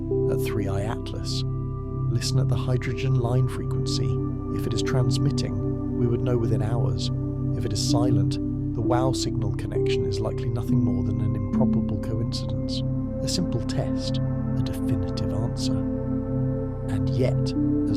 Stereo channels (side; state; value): both; identical; correlation 1.00